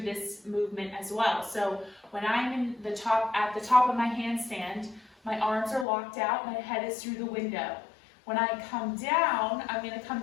this movement as well. So when I'm at the top of my handstand, my arms are locked out, my head is through the window. When I come down, I'm going to come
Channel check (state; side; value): drops out; right; at 5.9 s